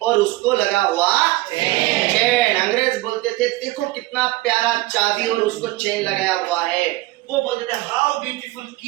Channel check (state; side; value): quieter; left; 19.3 dB